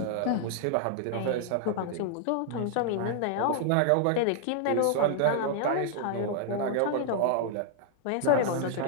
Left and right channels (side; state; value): both; different; correlation -0.01